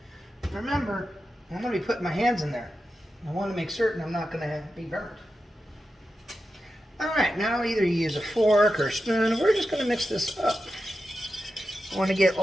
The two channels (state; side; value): normal; both; correlation 0.90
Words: Remember, I'm going to be putting my hands in there. I want to make certain I'm not going to be burnt. Alright, now either you use a fork or a spoon, or we're just going to mix this up. I want to get